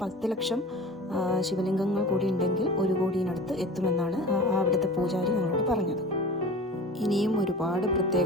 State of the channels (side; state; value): both; normal; correlation 0.38